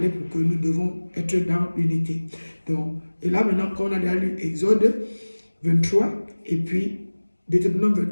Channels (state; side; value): inverted; both; correlation -1.00